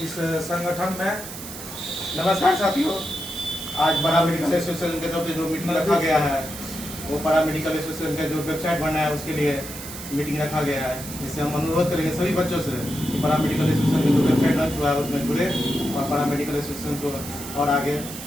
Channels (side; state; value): right; noise; hiss, 11 dB below the sound